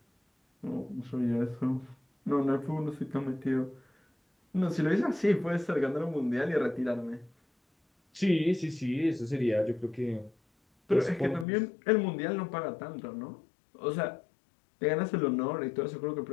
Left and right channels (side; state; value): right; drops out; at 11.5 s